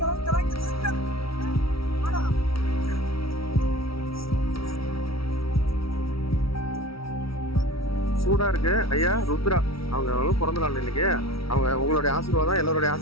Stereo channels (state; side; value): late; right; 0.75 ms